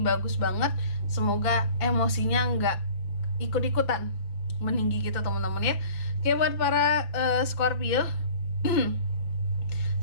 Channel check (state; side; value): late; right; 5.9 ms